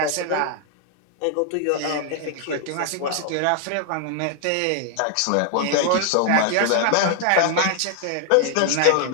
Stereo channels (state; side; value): different; both; correlation 0.00